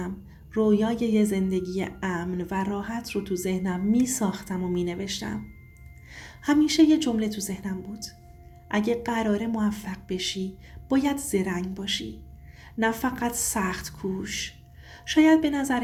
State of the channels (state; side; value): identical; both; correlation 1.00